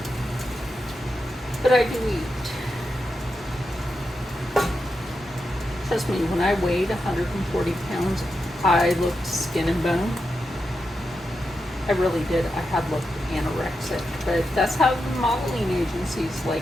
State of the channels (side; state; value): both; normal; correlation 0.87